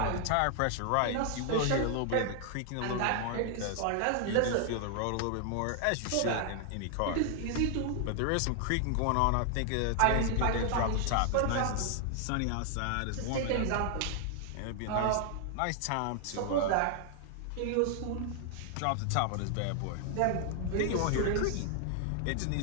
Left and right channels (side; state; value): both; different; correlation 0.00